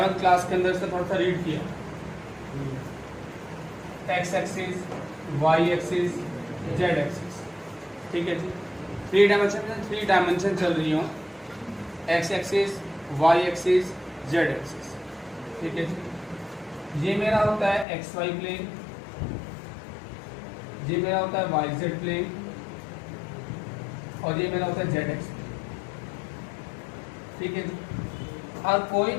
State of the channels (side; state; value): right; drops out; at 17.9 s